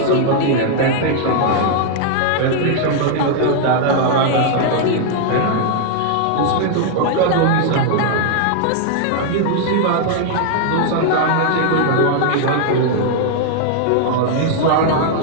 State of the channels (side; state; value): both; different; correlation 0.00